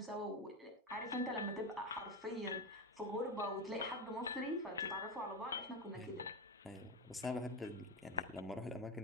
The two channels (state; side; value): normal; both; correlation 0.17